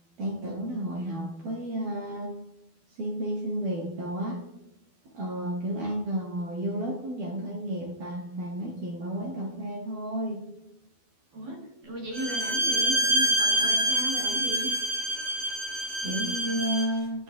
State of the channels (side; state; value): left; late; 12 ms